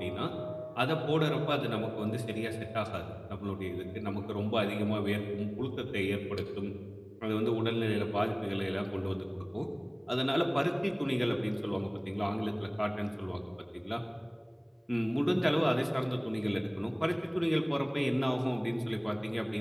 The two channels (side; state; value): both; identical; correlation 1.00